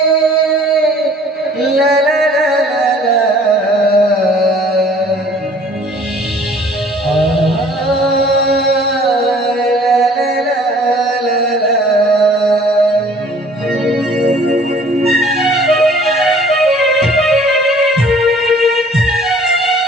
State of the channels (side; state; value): both; normal; correlation 0.53